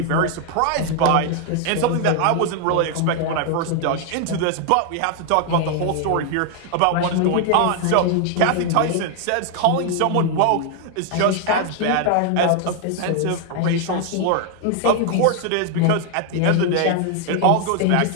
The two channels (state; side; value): different; both; correlation 0.00